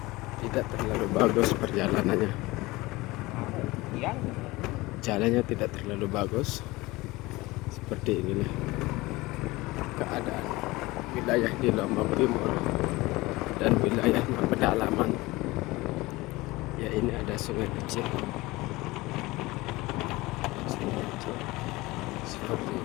tidak terlalu bagus perjalanannya, jalannya tidak terlalu bagus. Seperti inilah keadaan wilayah di Lombok Timur dan wilayahnya pedalaman. Ya, ini ada sungai kecil, seperti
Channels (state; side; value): quieter; right; 20.9 dB